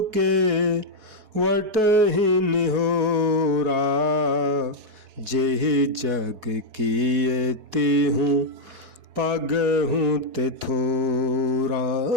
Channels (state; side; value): late; left; 4.6 ms